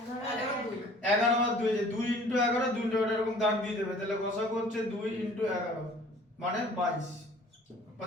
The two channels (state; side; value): normal; both; correlation 0.51